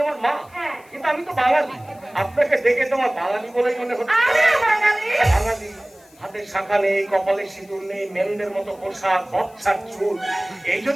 আমার মা? হ্যাঁ। কিন্তু আমি তো বাঙালি। আপনাকে দেখে তোমার বাঙালি বলেই মনে হচ্ছে। আমিও বাঙালি। বাঙালি, হাতে শাখা নেই, কপালে সিঁদুর নেই, মেরুনের মতো পোশাক, বচ্ছার চুল। এই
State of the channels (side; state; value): left; noise; hiss, 28 dB below the sound